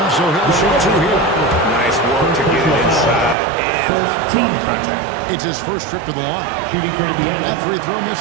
so he'll shoot two here. Nice work to get it inside and draw contact. It's his first trip to the line. That free throw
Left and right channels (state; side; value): drops out; left; at 3.4 s